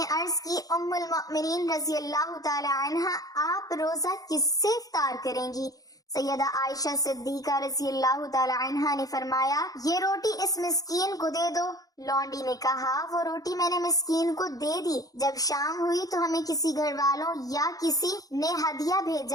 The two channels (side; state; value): right; late; 0.18 ms